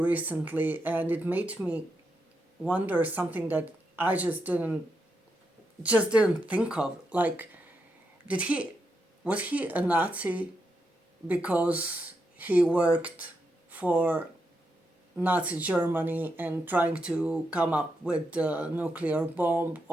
and it made me wonder something that I just didn't think of. Like, did he was he a Nazi because he worked for Nazi Germany and trying to come up with the nuclear bomb,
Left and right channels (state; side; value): normal; both; correlation 0.83